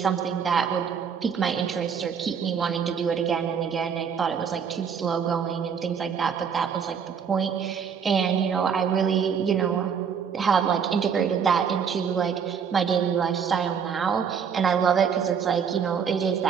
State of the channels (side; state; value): left; quieter; 7.0 dB